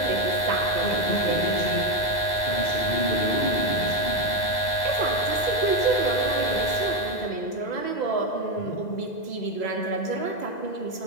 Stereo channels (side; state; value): right; late; 2.0 ms